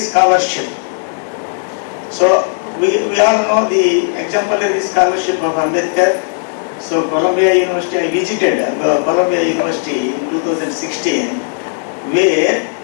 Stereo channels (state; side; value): silent; right; 70 dB below the other